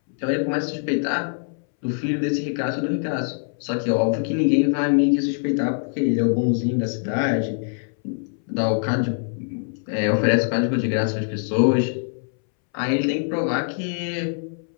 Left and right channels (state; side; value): silent; right; 62 dB below the other